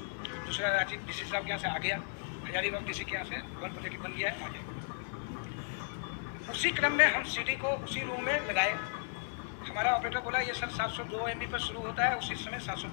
दूसरा राजीव डीसी साहब के यहाँ से आ गया, हजारीबाग डीसी के यहाँ से 1 पॉजिटिव बन गया है, आ गया। उसी क्रम में हम सीडी को उसी रूम में लगाए। हमारा ऑपरेटर बोला ये सर 702 MB पर शुरू होता है, उसी समय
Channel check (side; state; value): right; silent; digital silence